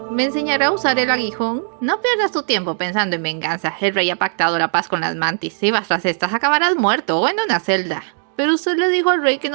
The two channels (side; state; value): left; silent; digital silence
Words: ¿me enseñará a usar el aguijón? No pierdas tu tiempo pensando en venganza. El rey ha pactado la paz con las mantis. Si vas tras estas, acabarás muerto o en una celda. Pero usted le dijo al rey que